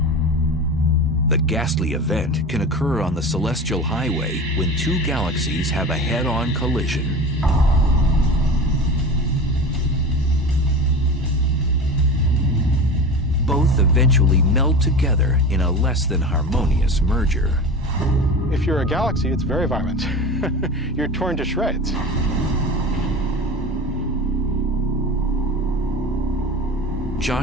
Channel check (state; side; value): normal; both; correlation 0.31